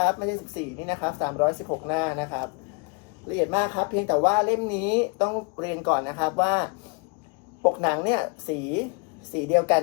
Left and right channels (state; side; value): quieter; right; 35.3 dB